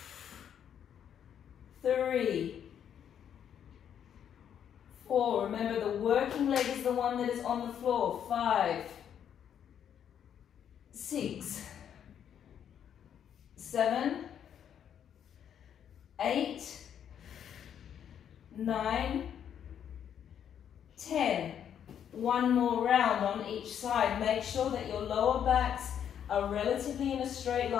3, 4. Remember, the working leg is the one that is on the floor. 5, 6, 7, 8, 9, 10. One more round on each side. Make sure that your lower backs are relatively in a straight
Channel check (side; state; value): right; quieter; 9.0 dB